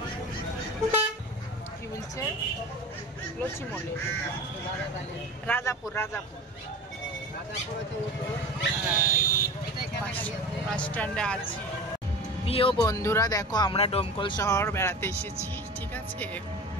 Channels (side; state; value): both; normal; correlation 0.34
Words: কি বলছে। লক্ষ্মীমণি, রাজাপুর, রাজাপুর বাস স্ট্যান্ডে আছি। প্রিয় বন্ধুরা দেখো, আমরা ডোমকল শহর বেড়াতে এসেছি, ঠিক আছে,